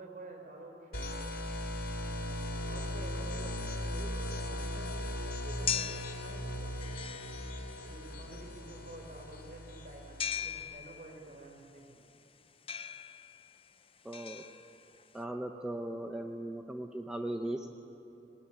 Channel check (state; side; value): normal; both; correlation 0.46